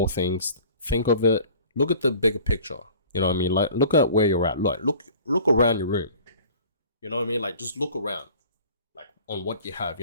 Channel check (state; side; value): inverted; both; correlation -0.46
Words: things. Think of it look at the bigger picture. You know what I mean? Like, look at where you're at. Look around your room. You know what I mean? Like, just look around, like, on what you have.